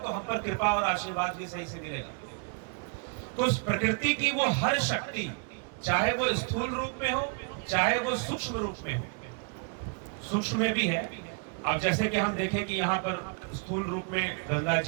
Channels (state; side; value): quieter; left; 38.9 dB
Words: हम पर कृपा और आशीर्वाद भी सही से मिलेगा। तो उस प्रकृति की वो हर शक्ति, चाहे वो स्थूल रूप में हो, चाहे वो सूक्ष्म रूप में हो, सूक्ष्म में भी है। अब जैसे कि हम देखें कि यहाँ पर स्थूल रूप में गंगा